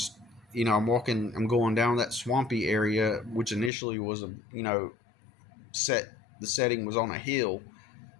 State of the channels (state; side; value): drops out; right; at 3.7 s